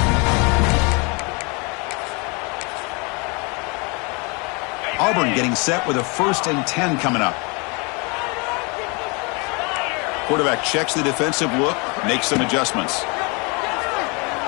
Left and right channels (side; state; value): right; quieter; 30.6 dB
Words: Auburn getting set with a 1st and 10 coming up. Quarterback checks the defensive look, makes some adjustments.